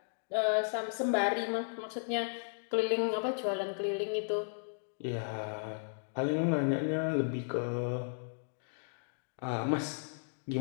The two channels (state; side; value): silent; right; digital silence